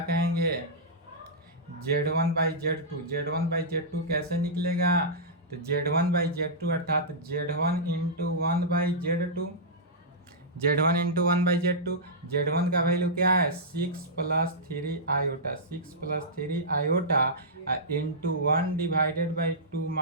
कहेंगे? Z1 by Z2। Z1 by Z2 कैसे निकलेगा? तो Z1 बाई Z2 अर्थात Z1 into 1 by Z2। Z1 into 1 by Z2। Z1 का वैल्यू क्या है? 6 plus 3 iota. 6 plus 3 iota into 1 divided by 2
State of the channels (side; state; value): both; normal; correlation -0.13